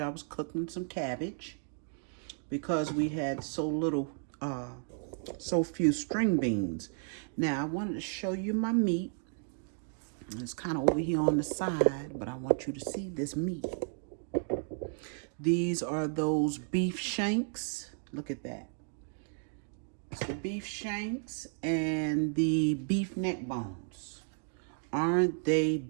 I was cooking some cabbage because we had so few string beans. Now, I wanted to show you my meat. It's kind of over here on the side, but I want you to see this meat. These are those beef shanks. Look at that. It's the beef shanks and the beef neck bones. Aren't they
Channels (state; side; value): silent; left; 55 dB below the other